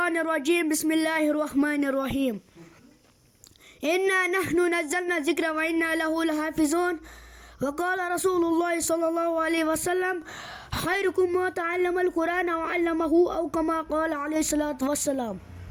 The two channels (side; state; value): both; identical; correlation 1.00